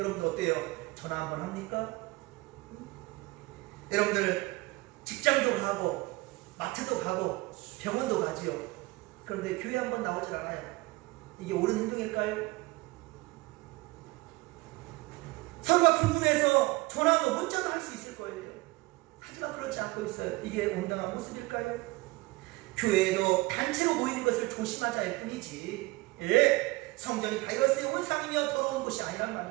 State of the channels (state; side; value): quieter; left; 22.2 dB